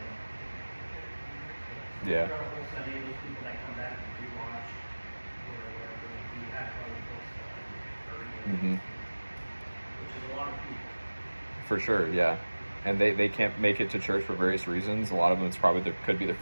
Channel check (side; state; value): both; inverted; correlation -1.00